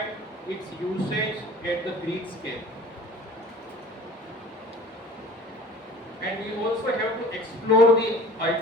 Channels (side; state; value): both; normal; correlation 0.44